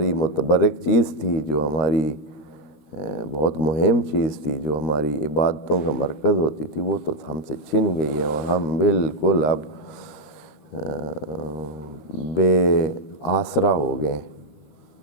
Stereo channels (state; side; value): late; right; 13 ms